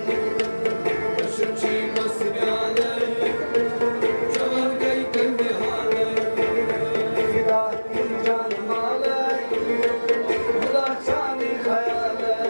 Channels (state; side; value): inverted; both; correlation -1.00